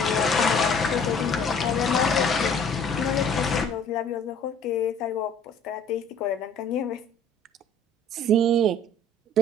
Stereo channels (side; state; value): both; normal; correlation 0.53